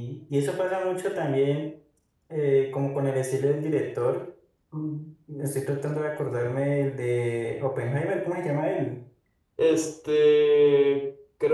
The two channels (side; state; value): both; identical; correlation 1.00